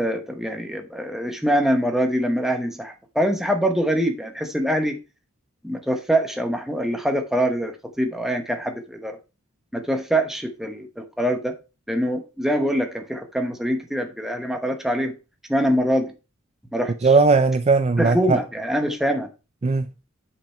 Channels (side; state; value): both; normal; correlation 0.65